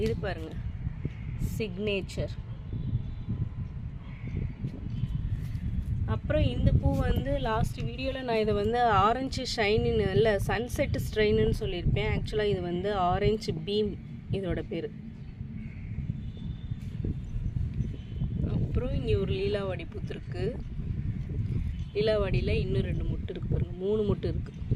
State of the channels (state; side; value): identical; both; correlation 1.00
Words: இது பாருங்கள், சிக்னேச்சர். அப்புறம் இந்த பூ வந்து லாஸ்ட் வீடியோவில் நான் இதை வந்து ஆரஞ்சு ஷைனின்னு இல்லை சன்செட் ஸ்ட்ரெயின்னு சொல்லியிருப்பேன். ஆக்சுவலாக இது வந்து ஆரஞ்சு பீம் இதோட பேர். அப்புறம் இங்கே ஒரு லீலாவாடி பூத்துருக்கு. லீலாவாடியில் இன்னும் 2 மொட்டு இருக்குது பாருங்கள், 3 மொட்டு இருக்குது.